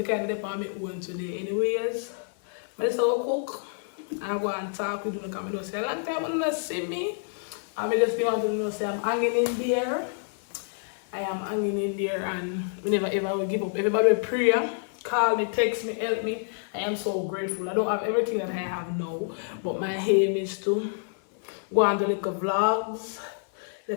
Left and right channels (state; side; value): silent; right; digital silence